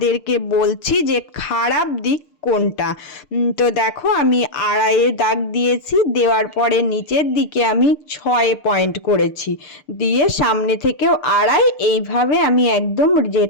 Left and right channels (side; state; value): right; late; 6.7 ms